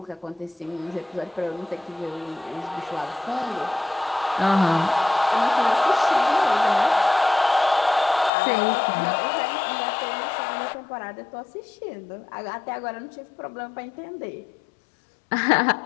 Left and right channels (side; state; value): right; drops out; at 8.3 s